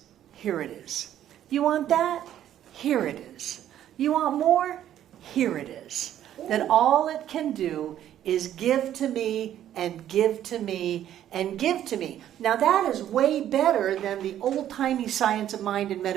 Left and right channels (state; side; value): quieter; left; 11.3 dB